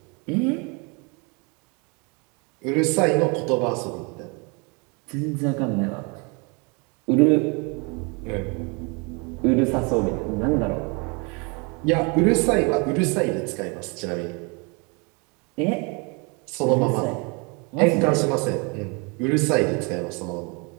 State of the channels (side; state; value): left; quieter; 31.5 dB